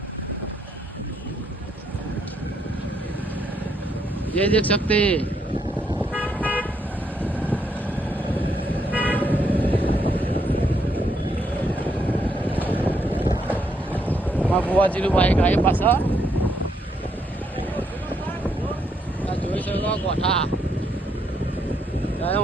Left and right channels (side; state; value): both; normal; correlation 0.75